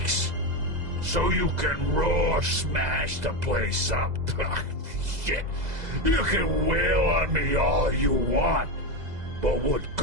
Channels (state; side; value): late; left; 2.0 ms